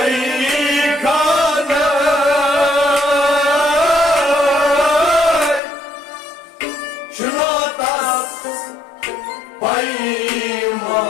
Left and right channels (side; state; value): right; drops out; at 5.6 s